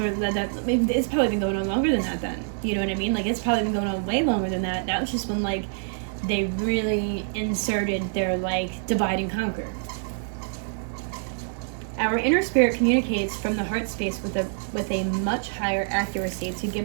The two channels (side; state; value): left; silent; 57 dB below the other